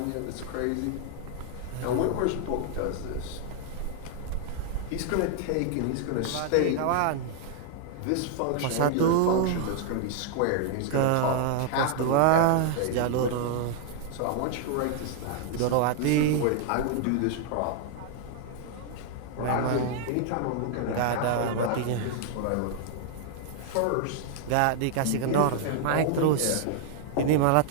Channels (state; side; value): different; both; correlation 0.00